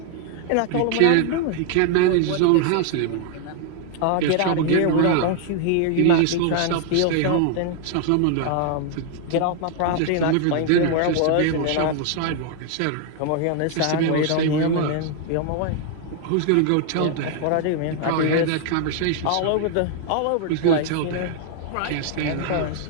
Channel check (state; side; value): different; both; correlation 0.00